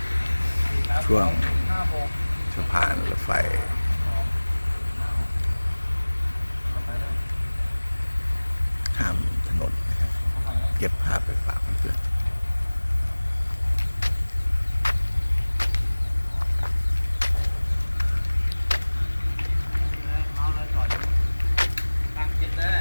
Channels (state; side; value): inverted; both; correlation -1.00